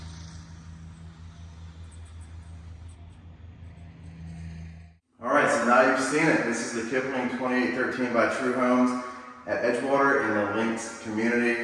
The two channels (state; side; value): identical; both; correlation 1.00